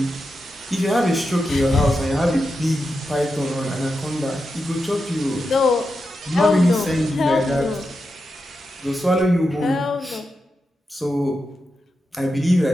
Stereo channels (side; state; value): both; normal; correlation 0.88